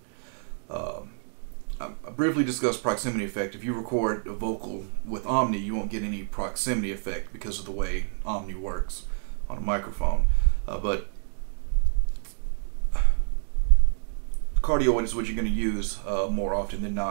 I briefly discussed proximity effect. If you record a vocal with Omni, you won't get any proximity effect because of the way Omni works on a microphone. But cardioid is what you're going to use more often than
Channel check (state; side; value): silent; left; 60 dB below the other